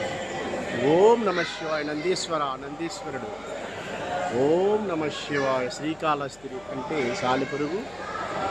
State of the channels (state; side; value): noise; left; hum, 25 dB below the sound